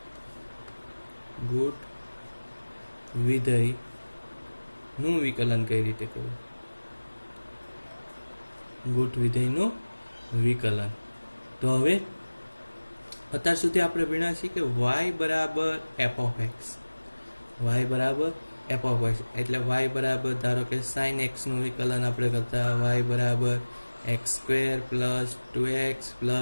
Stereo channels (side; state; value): both; inverted; correlation -1.00